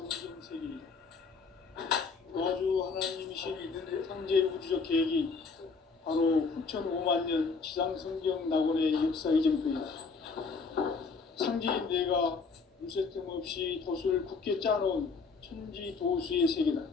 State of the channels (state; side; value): quieter; right; 4.7 dB